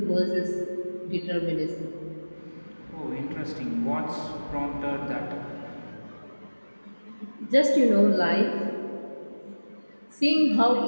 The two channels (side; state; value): both; inverted; correlation -1.00